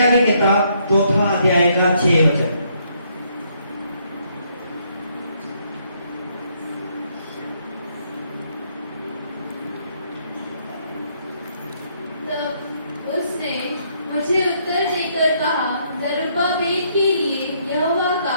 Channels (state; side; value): inverted; both; correlation -0.71